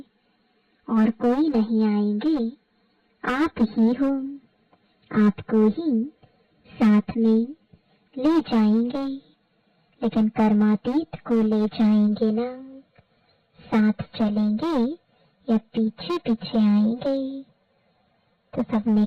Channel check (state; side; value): identical; both; correlation 1.00